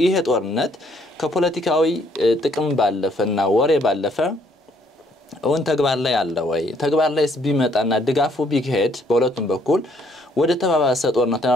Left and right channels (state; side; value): normal; both; correlation 0.66